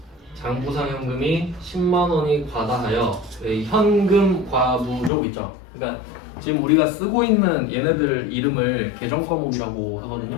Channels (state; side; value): drops out; right; at 5.1 s